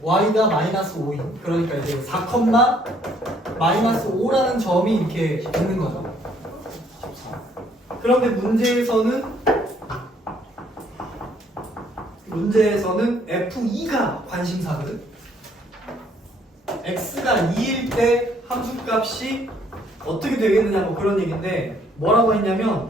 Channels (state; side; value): normal; both; correlation 0.65